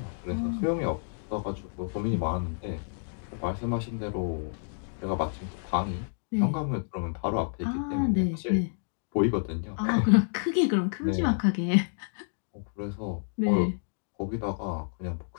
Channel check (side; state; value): right; silent; digital silence